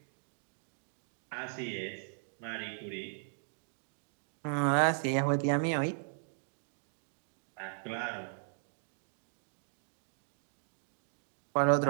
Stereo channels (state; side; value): silent; left; digital silence